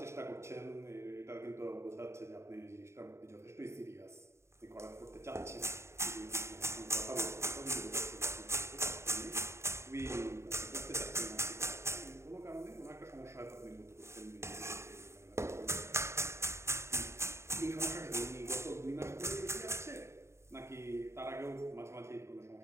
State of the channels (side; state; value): left; late; 0.13 ms